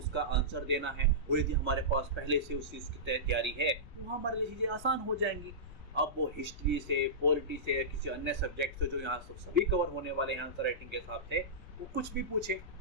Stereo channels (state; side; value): noise; left; rumble, 16 dB below the sound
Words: आंसर देना है। और यदि हमारे पास पहले से उस चीज़ की तैयारी है तो हमारे लिए चीज़ें आसान हो जाएंगी। अब वो हिस्ट्री से, पॉलिटी से या किसी अन्य सब्जेक्ट से जो यहाँ सभी कवर होने वाले हैं आंसर राइटिंग के हिसाब से, वो कुछ भी पूछे,